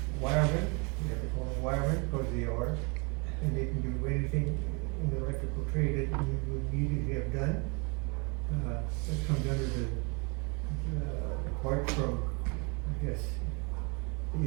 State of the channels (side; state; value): left; quieter; 31.9 dB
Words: wiremen, you have to call them wiremen, because they are, and they can do anything in the electrical trade that you would need to have done. That comes under the apart from, I guess, you